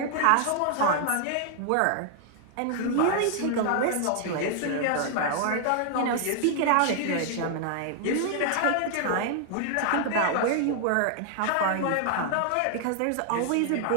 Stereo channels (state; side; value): different; both; correlation 0.00